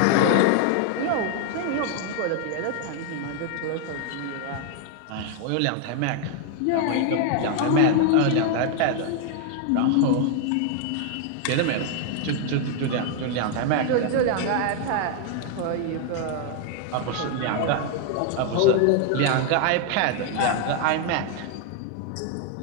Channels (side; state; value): both; different; correlation 0.00